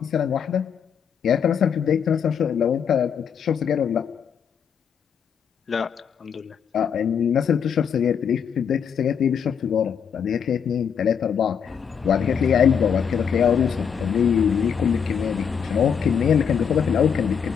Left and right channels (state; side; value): quieter; right; 7.3 dB